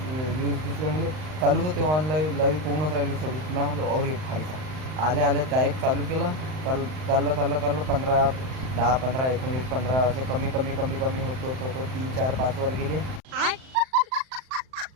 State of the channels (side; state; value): left; late; 39 ms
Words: व्ह्यूज दिसले म्हणजे चालूच होते. ऑनलाईन लाईव्ह पोहूनच राहिले 26 ना. और एक भाईचा आल्या डायरेक्ट चालू केलं. चाललं 15, 10, 15, 19, 15 असे कमी होतो 3, 4, 5 वर गेले.